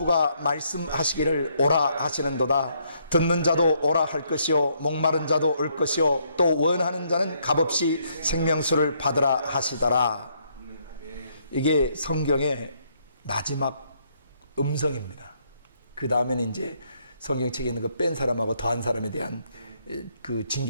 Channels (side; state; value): both; inverted; correlation -0.72